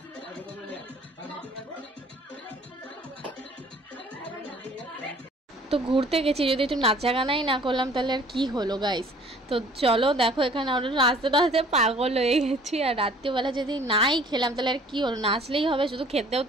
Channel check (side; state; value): both; normal; correlation 0.53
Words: তো ঘুরতে গেছি, যদি একটু নাচা গানাই না করলাম তাহলে আর কি হলো গাইস। তো চলো দেখো এখানে আমরা নাচতে নাচতে পাগল হয়ে গেছি, আর রাত্রিবেলা যদি নাই খেলাম তাহলে আর কি হলো, নাচলেই হবে, শুধু খেতেও